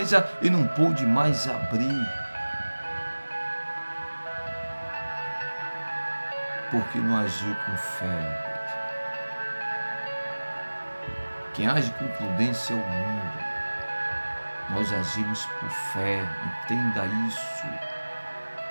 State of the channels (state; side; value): inverted; both; correlation -1.00